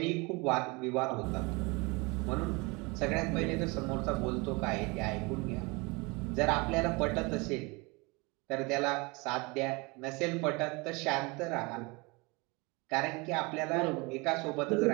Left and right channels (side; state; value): left; quieter; 27.0 dB